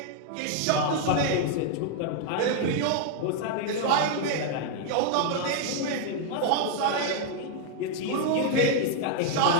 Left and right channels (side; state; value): both; different; correlation 0.00